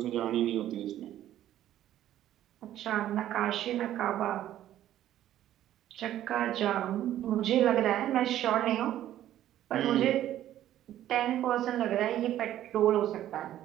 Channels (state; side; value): quieter; left; 12.4 dB